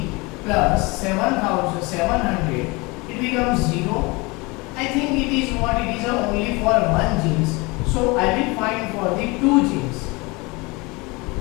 plus 7700. It becomes 0. I think it is what? It is only for one jeans. So I will find for the two jeans.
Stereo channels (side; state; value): right; quieter; 25.6 dB